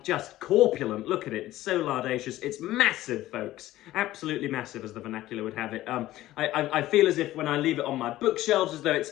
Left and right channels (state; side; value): quieter; right; 15.4 dB